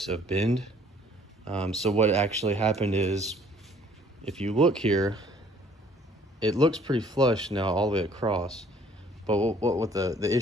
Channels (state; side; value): normal; both; correlation 0.58